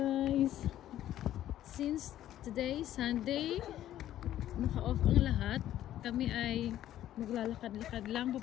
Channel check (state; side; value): quieter; right; 12.5 dB